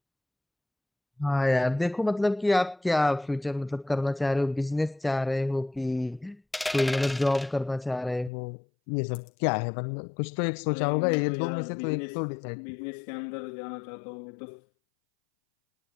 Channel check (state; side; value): drops out; right; at 8.3 s